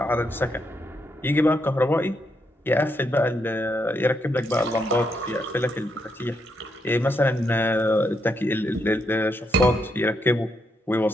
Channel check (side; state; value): both; normal; correlation 0.79